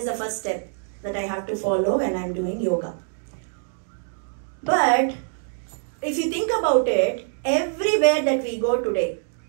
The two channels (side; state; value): left; silent; digital silence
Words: the first step that I have to follow when I am doing yoga. But if you think about it, everywhere that we go today,